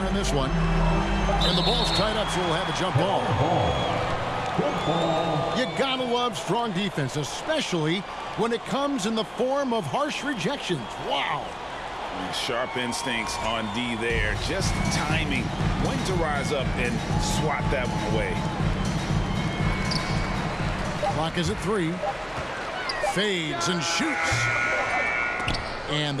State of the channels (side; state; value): both; identical; correlation 1.00